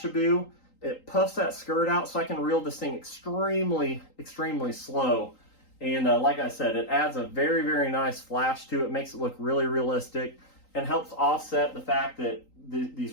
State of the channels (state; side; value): late; right; 3.8 ms